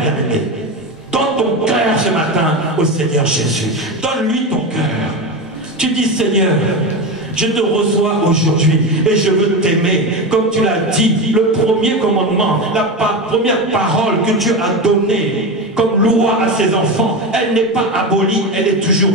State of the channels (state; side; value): normal; both; correlation 0.19